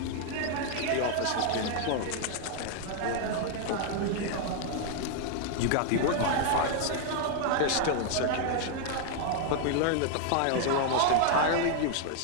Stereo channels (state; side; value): different; both; correlation 0.00